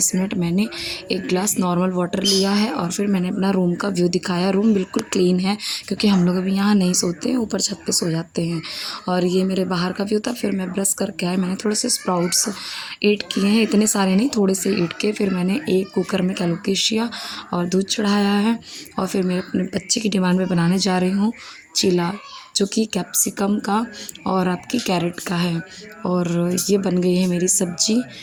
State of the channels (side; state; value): both; identical; correlation 1.00